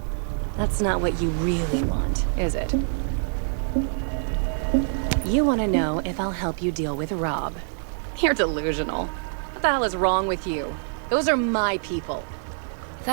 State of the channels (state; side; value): silent; left; digital silence